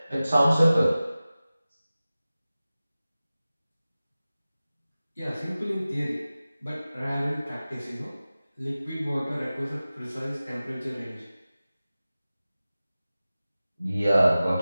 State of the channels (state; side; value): inverted; both; correlation -0.96